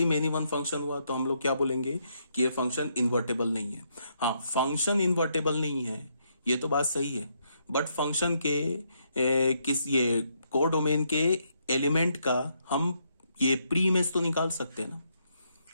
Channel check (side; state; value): both; inverted; correlation -0.76